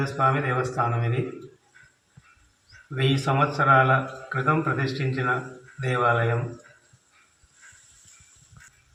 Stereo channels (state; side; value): identical; both; correlation 1.00